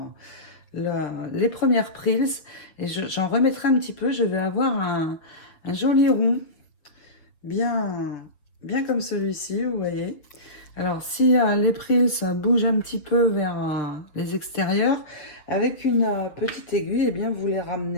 les premières prills et j'en remettrai un petit peu. Je vais avoir un joli rond bien comme celui-ci, vous voyez. Alors, si les prills bougent un petit peu vers les extérieurs, avec une petite aiguille, eh bien, vous les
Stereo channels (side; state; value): right; late; 6.6 ms